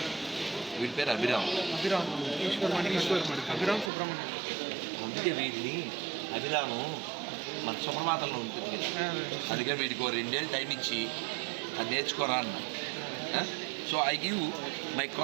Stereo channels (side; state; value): left; drops out; at 3.9 s